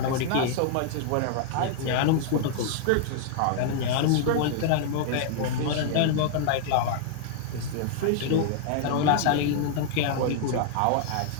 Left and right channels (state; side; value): different; both; correlation -0.01